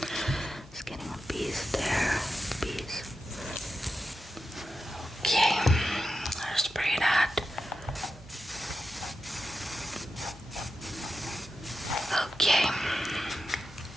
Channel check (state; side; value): normal; both; correlation 0.90